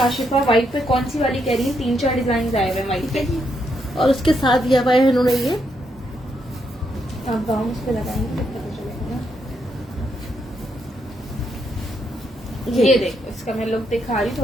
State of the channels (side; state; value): both; normal; correlation 0.78